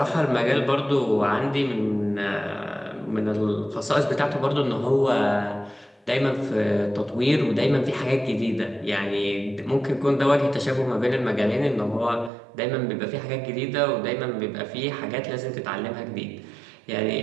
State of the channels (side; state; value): left; drops out; at 12.3 s